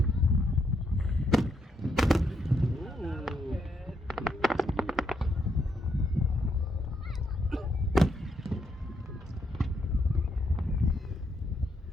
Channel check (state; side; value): normal; both; correlation 0.78